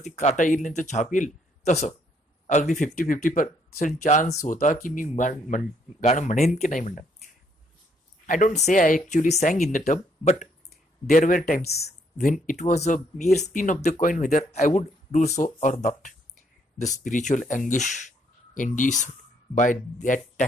काटा येईल नाही तर छाप येईल, तसं अगदी 50-50% चान्स होता की मी गाणं म्हणेन की नाही म्हणणार. I don't say I actually sang in the tub, but there were times when it was a mere spin of the coin whether I would do so or not. The spiritual anguish induced by that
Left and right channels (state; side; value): normal; both; correlation 0.70